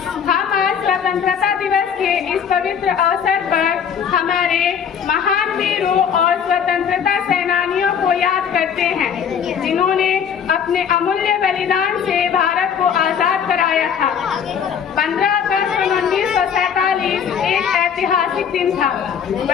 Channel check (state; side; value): quieter; right; 7.6 dB